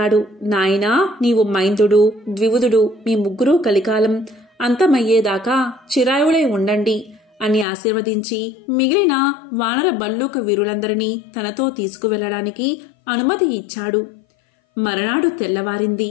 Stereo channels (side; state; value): right; drops out; at 7.7 s